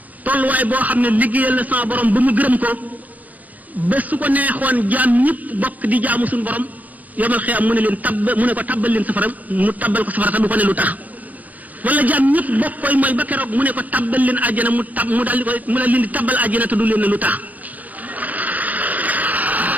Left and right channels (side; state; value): left; late; 0.079 ms